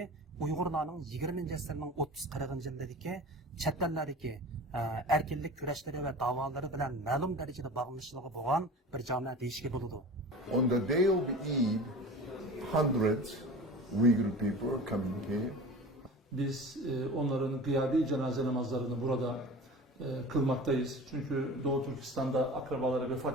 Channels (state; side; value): normal; both; correlation 0.37